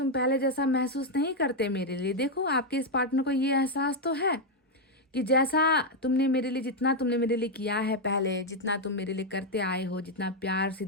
पहले जैसा महसूस नहीं करते मेरे लिए। देखो आपके इस पार्टनर को ये एहसास तो है कि जैसा तुमने मेरे लिए, जितना तुमने मेरे लिए किया है पहले, जितना तुम मेरे लिए करते आए हो, जितना प्यार,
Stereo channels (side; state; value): both; normal; correlation 0.01